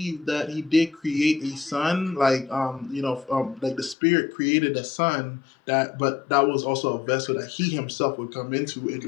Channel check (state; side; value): drops out; right; at 4.0 s